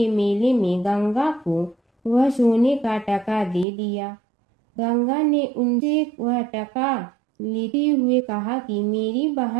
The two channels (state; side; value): drops out; left; at 3.7 s